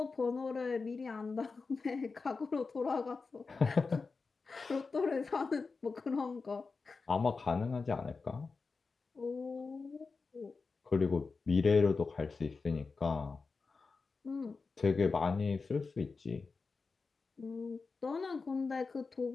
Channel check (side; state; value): right; quieter; 4.4 dB